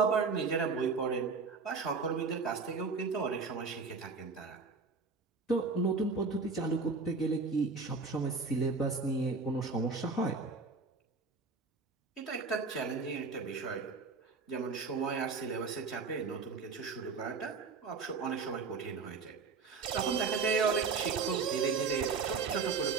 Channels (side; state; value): left; quieter; 4.6 dB